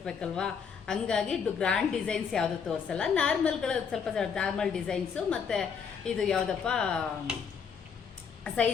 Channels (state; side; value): quieter; right; 6.5 dB